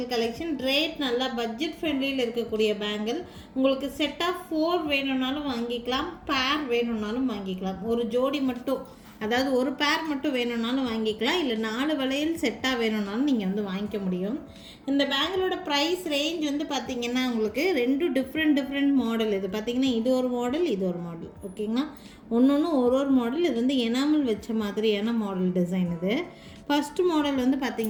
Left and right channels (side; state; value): both; identical; correlation 1.00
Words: கலெக்ஷன். ரேட் நல்லா பட்ஜெட் ஃப்ரெண்ட்லியில் இருக்கக்கூடிய பேங்கிள். உங்களுக்கு செட் ஆஃப் 4 வேணும்னாலும் வாங்கிக்கலாம், பேர் வேணும்னாலும் வாங்கிக்கலாம். ஒரு ஜோடி மட்டும், அதாவது ஒரு பேர் மட்டும் வேணும்னாலும் வாங்கிக்கலாம், இல்லை 4 வளையல் செட்டாக வேணும்னாலும் நீங்கள் வந்து வாங்கிக்க முடியும். இந்த பேங்கிளோட ப்ரைஸ் ரேஞ்ச் வந்து பார்த்திங்கன்னா உங்களுக்கு 2 டிஃப்ரெண்ட் மாடல். இது பார்த்திங்கன்னா இது ஒரு மாடல், இது ஒரு மாடல். ஓகேங்களா, ஒன்று ஒரு மாடல். இது வந்து எனாமல் வச்ச மாதிரியான மாடல் டிசைன். இது ஃபஸ்ட்டு மாடல் வந்து